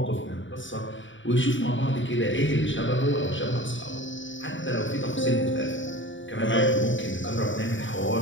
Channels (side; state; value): right; late; 0.55 ms